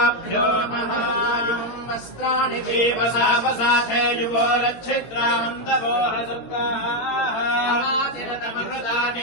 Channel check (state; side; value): late; right; 18 ms